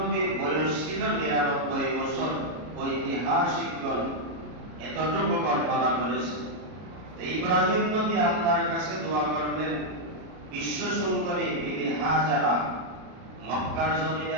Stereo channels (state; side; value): late; left; 33 ms